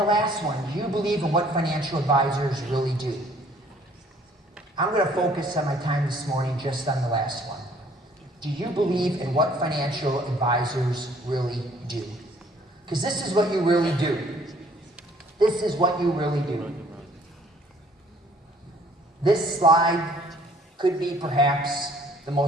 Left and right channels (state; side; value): normal; both; correlation 0.59